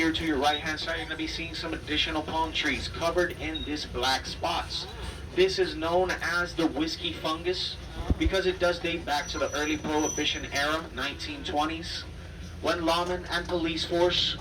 to your right hand side, you're going to be seeing some additional palm trees covered in this black spots. This is known as the whiskey fungus because it does date back to the early Prohibition era, 1920s, when lawmen and police force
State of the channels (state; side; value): identical; both; correlation 1.00